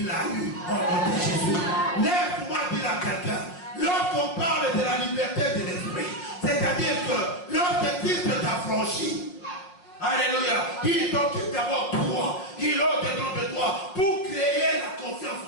l'a eu au nom de Jésus. Laisse-moi dire à quelqu'un, lorsqu'on parle de la liberté de l'esprit, c'est-à-dire que lorsque Christ t'a franchi, alléluia, il t'occupe d'abord toi, il est au-dedans de toi, pour créer la confiance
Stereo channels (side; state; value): right; late; 5.5 ms